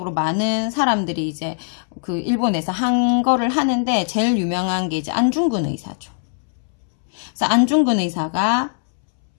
많은 사람들이 이제 그 일본에서 한 거를 하는데 제일 유명한 게 이제 안중근 의사죠. 그래서 안중근 의사가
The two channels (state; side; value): silent; right; 65 dB below the other